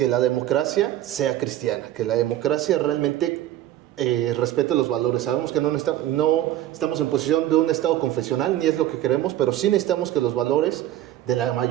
la democracia sea cristiana, que la democracia realmente respete los valores. Sabemos que no estamos en posición de un Estado confesional, ni es lo que queremos, pero sí necesitamos que los valores de la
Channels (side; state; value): left; quieter; 13.3 dB